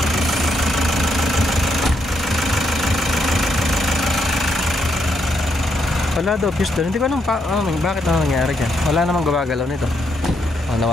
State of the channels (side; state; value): both; normal; correlation 0.77